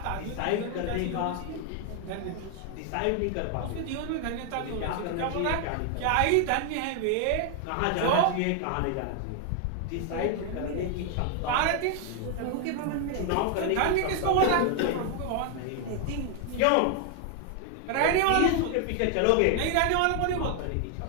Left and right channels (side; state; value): both; different; correlation 0.00